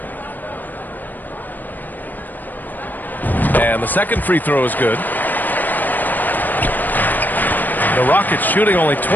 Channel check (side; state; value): right; late; 0.087 ms